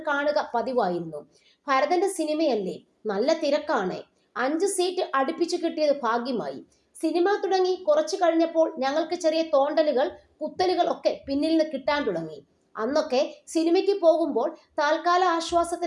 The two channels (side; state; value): both; identical; correlation 1.00